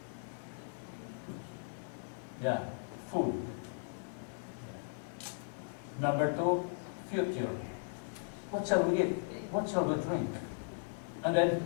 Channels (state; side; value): silent; right; 53 dB below the other